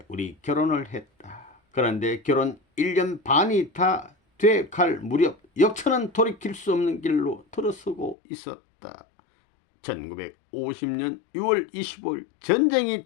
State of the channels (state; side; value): drops out; right; at 8.2 s